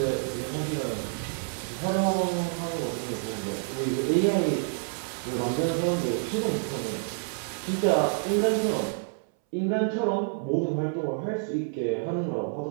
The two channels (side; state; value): left; silent; 59 dB below the other